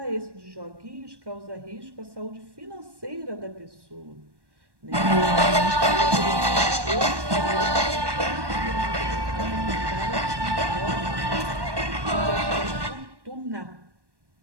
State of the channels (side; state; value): left; late; 1.1 ms